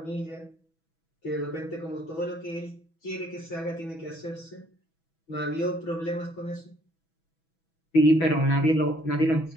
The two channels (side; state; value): right; late; 6.1 ms